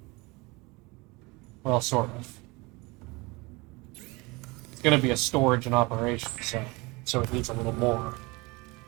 Well, sort of. It's gonna be a storage and operation, so it needs a little more.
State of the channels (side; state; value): left; quieter; 25.1 dB